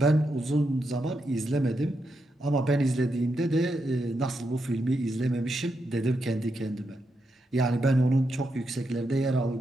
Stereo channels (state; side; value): normal; both; correlation 0.84